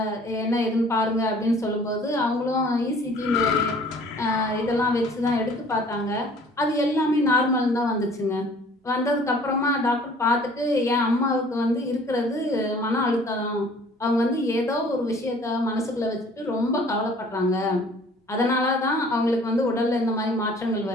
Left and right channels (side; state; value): both; normal; correlation 0.52